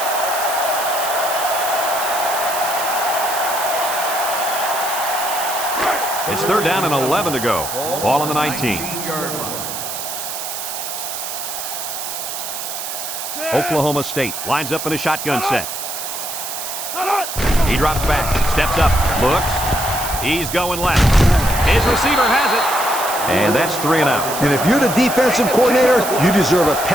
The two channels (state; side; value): noise; right; hiss, 6 dB below the sound